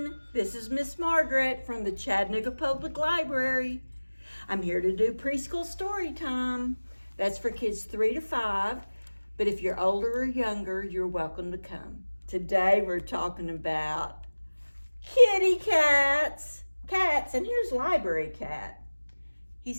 This is Miss Margaret from the Chattanooga Public Library. I'm here to do preschool story time. That's for kids 3 to 5, but if you're older or younger, you're welcome to come. Today we're talking about kitty cats. And here's Library Cat. He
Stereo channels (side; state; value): both; inverted; correlation -1.00